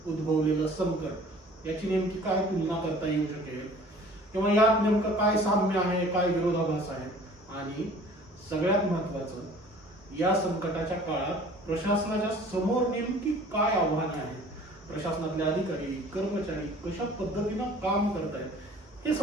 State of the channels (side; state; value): both; normal; correlation 0.49